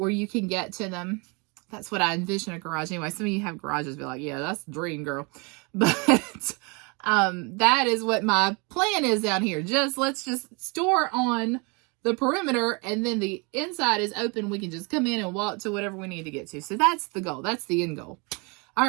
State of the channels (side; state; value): left; quieter; 30.8 dB